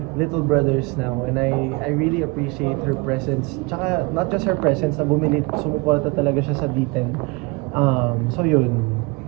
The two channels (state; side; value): quieter; left; 26.7 dB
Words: little brothers now. And I really appreciate her presence. Tsaka, not just her presence, na sumuporta talaga siya sa D10. So yun.